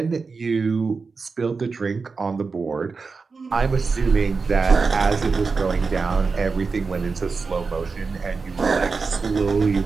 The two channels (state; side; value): quieter; left; 4.6 dB